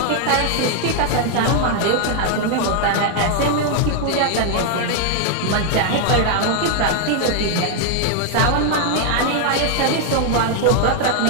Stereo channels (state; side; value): different; both; correlation 0.00